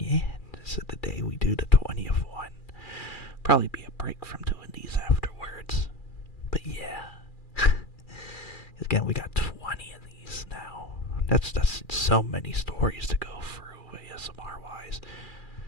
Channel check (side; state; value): right; late; 2.4 ms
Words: this is the day we do the 20th one. Probably be a break from doing these afterwards. But yeah. Again, we got 20 of these now. That's so many stories to go through ASMR-wise.